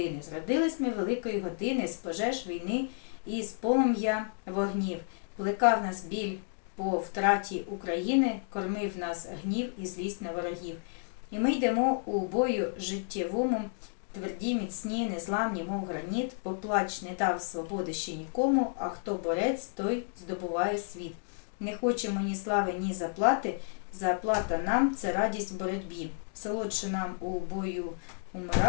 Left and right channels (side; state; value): right; silent; digital silence